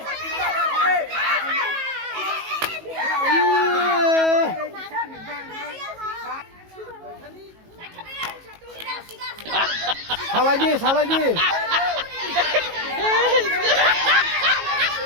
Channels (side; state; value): left; late; 18 ms